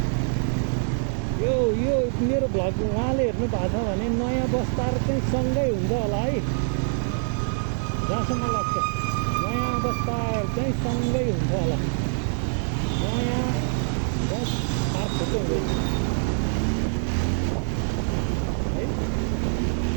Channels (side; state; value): left; silent; digital silence